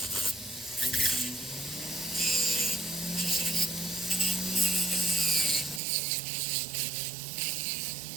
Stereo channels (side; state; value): left; drops out; at 5.8 s